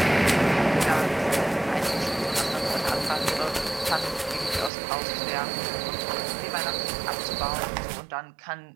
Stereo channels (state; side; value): drops out; left; at 4.7 s